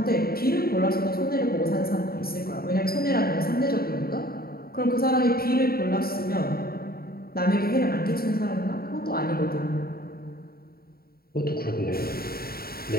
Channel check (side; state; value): right; late; 0.44 ms